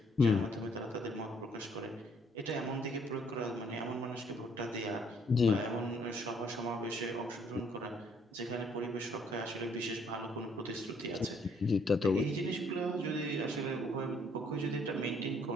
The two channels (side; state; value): both; normal; correlation 0.65